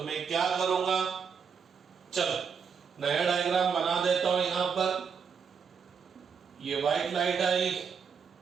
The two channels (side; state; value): left; quieter; 6.4 dB